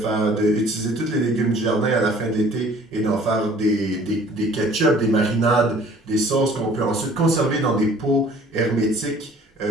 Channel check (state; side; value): normal; both; correlation 0.52